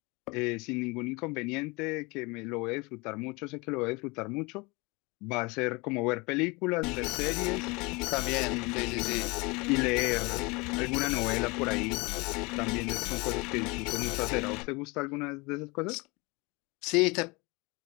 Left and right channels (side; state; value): right; quieter; 26.4 dB